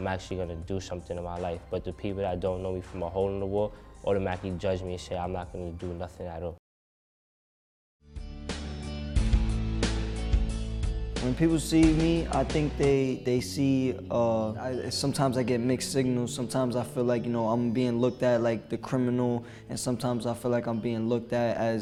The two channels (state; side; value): identical; both; correlation 1.00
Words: actually gonna do something in my life. But the people that don't know me from a hole in the wall automatically judge me and say I'm not gonna do nothing at all. When people see me, I think they see, sometimes I get mixed signals. Sometimes I feel like, I'm being looked at like the criminal, and sometimes I feel like I'm being looked at